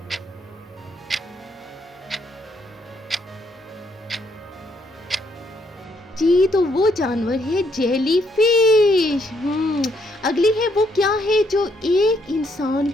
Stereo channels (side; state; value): both; normal; correlation 0.72